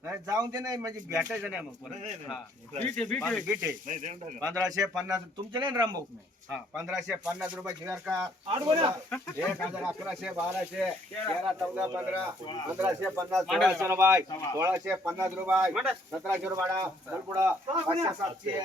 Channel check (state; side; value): normal; both; correlation 0.65